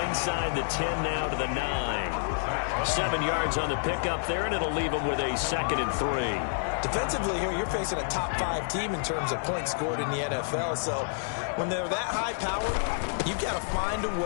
the 10 now to the 9. 7 yards on the pickup there, and it'll leave him with a 2nd and 3. Defensively here, you're facing a top 5 team in terms of points scored in the NFL. So when they're that high powered, you've got to find a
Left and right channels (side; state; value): right; silent; digital silence